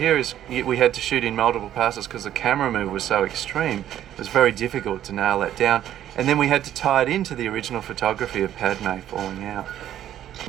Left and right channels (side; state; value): left; quieter; 11.5 dB